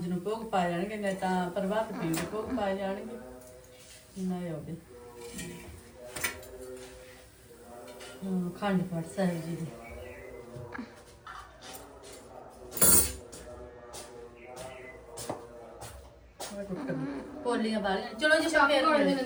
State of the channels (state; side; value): identical; both; correlation 1.00